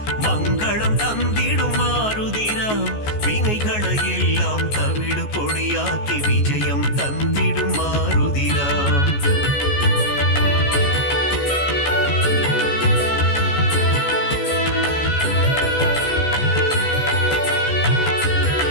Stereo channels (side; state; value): right; late; 14 ms